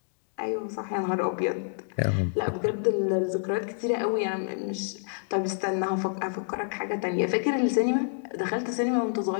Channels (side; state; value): right; silent; digital silence